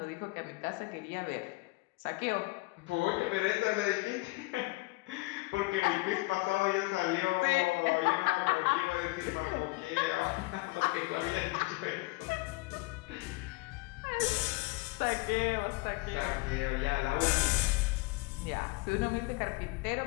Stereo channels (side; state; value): right; quieter; 23.7 dB